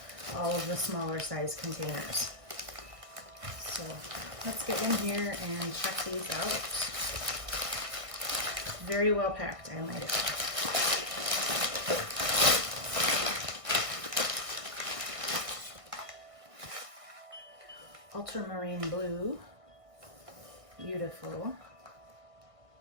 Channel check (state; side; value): late; left; 1.6 ms